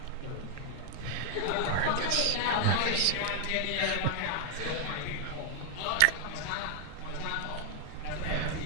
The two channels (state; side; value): different; both; correlation 0.00